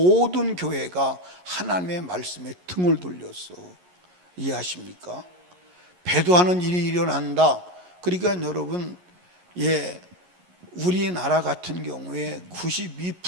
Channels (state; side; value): late; left; 11 ms